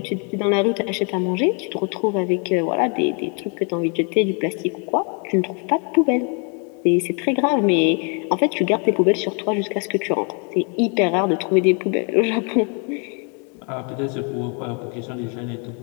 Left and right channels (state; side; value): quieter; right; 37.1 dB